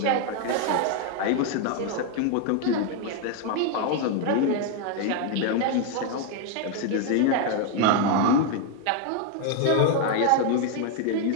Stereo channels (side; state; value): both; different; correlation 0.00